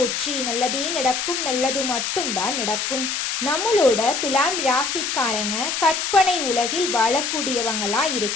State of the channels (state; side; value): noise; left; hiss, 2 dB below the sound